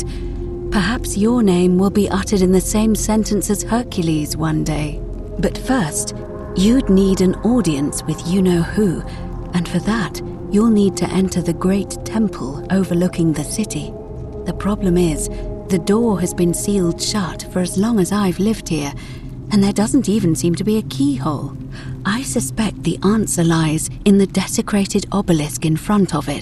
Perhaps your name will be uttered in the same sentence as Hercules one day. But first, you'd need an audience with you-know-who, and for that, you'll need to enter the great temple overlooking the city. The problem is, the door has been sealed shut for as long as I've lived here, and there doesn't even seem to be a keyhole. I suspect the answer lies in the desecrated obelisk in front of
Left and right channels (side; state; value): both; identical; correlation 1.00